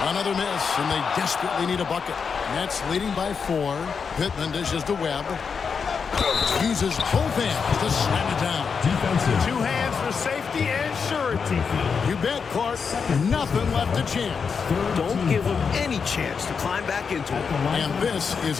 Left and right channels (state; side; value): quieter; right; 5.9 dB